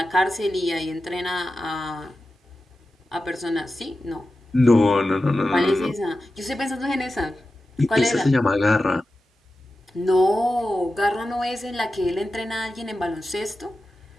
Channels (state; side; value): normal; both; correlation 0.93